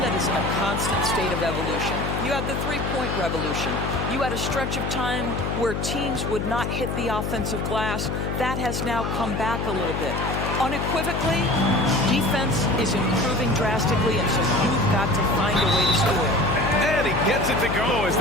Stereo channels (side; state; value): left; noise; hum, 2 dB below the sound